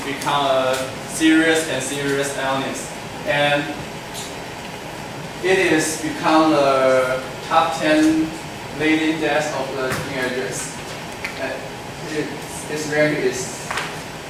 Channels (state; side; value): identical; both; correlation 1.00